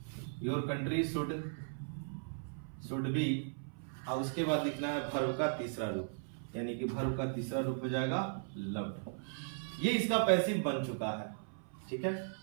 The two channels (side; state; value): left; silent; 53 dB below the other